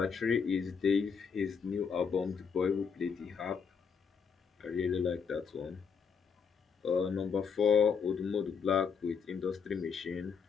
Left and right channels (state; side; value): quieter; right; 6.1 dB